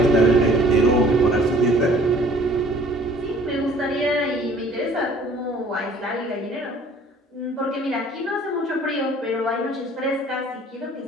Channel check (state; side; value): normal; both; correlation 0.54